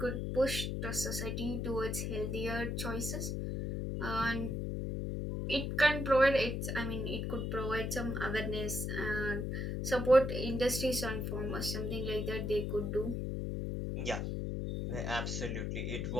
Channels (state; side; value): noise; left; hum, 1 dB below the sound